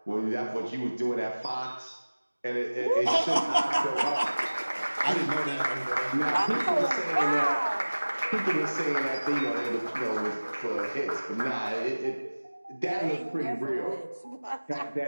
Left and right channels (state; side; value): inverted; both; correlation -1.00